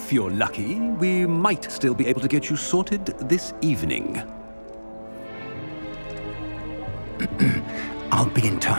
you're lucky, we might still be able to get you sorted this evening. I'll be in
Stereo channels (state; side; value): inverted; both; correlation -1.00